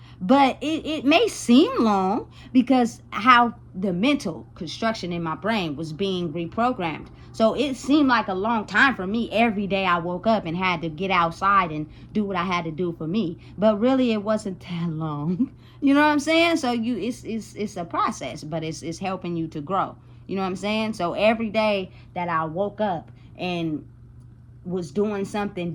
But it may seem long because how the mental construction in my brain was being reprogrammed. So it seemed like a long time for me. Every day I woke up and had to get outside and do what I had to do for me. But really it wasn't that long. You know what I'm saying? So it's a process, but it's helping you to grow. You know what I'm saying? So every day that I woke up and was doing something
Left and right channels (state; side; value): identical; both; correlation 1.00